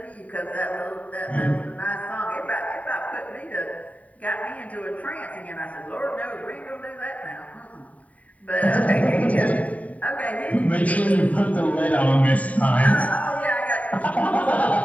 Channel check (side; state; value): right; late; 0.069 ms